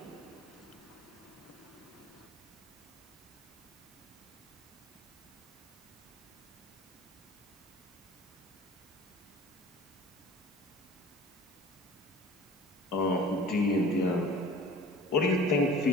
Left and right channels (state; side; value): normal; both; correlation 0.44